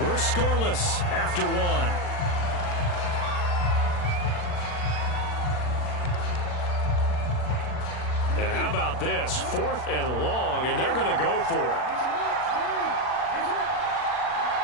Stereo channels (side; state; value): right; late; 40 ms